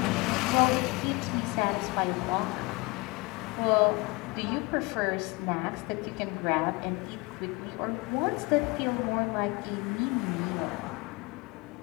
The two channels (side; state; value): right; quieter; 25.8 dB